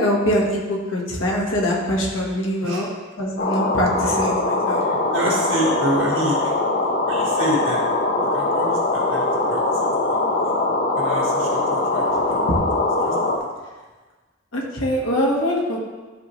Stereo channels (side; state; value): both; normal; correlation 0.07